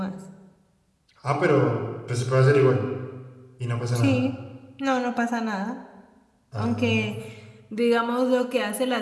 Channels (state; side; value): identical; both; correlation 1.00